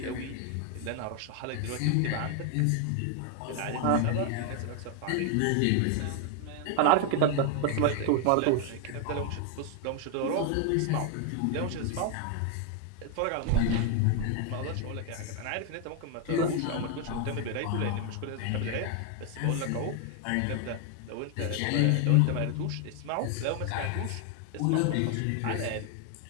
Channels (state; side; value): different; both; correlation 0.01